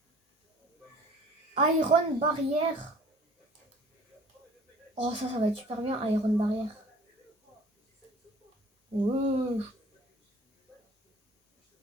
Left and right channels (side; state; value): both; normal; correlation 0.49